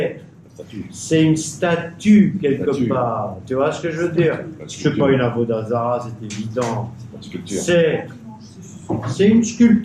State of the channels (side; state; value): both; identical; correlation 1.00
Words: C'est une statue quelque part. Tu vois ce que je veux dire? C'est pas une Avodazara, c'est évident. C'est une